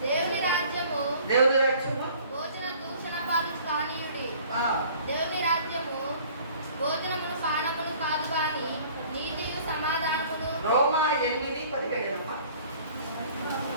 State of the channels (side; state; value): both; inverted; correlation -0.52